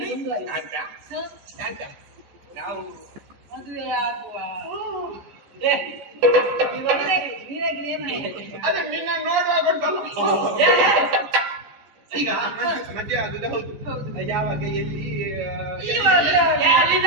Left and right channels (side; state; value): left; late; 14 ms